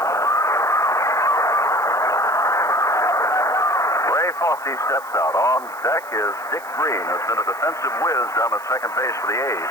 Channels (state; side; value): noise; right; hiss, 22 dB below the sound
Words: Ray Fosse steps out. On deck is Dick Green, who's been a defensive whiz down at second base for the